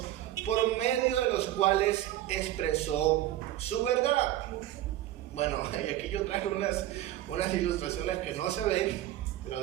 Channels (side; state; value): left; quieter; 14.1 dB